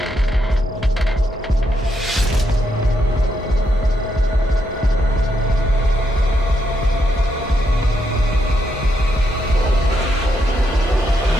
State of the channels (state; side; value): normal; both; correlation 0.79